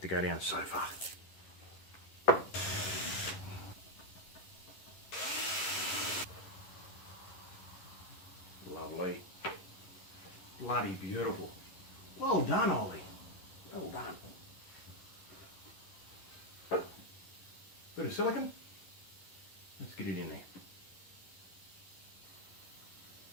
to go down so far. Lovely. Bloody beautiful. Well done, Ollie. Well done. Bit of silicone. Let's get it in there.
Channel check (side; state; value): right; late; 11 ms